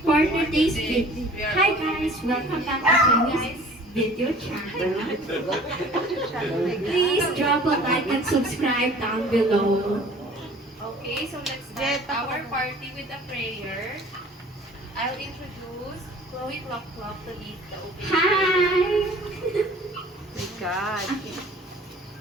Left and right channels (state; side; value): normal; both; correlation 0.48